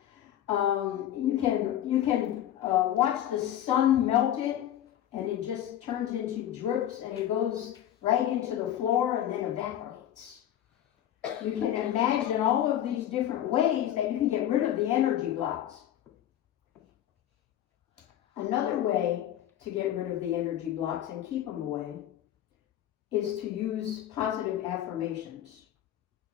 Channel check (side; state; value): right; quieter; 11.6 dB